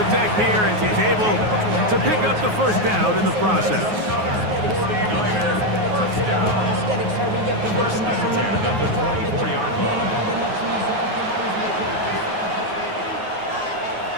deck here as he's able to pick up the first down in the process. 49er, first down. First and 10 at the 24-yard line.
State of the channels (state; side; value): late; left; 9.4 ms